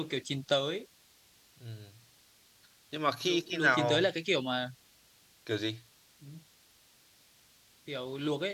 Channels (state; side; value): identical; both; correlation 1.00